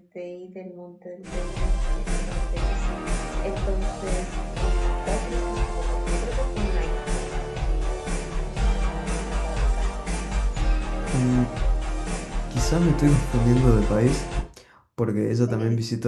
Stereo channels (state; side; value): identical; both; correlation 1.00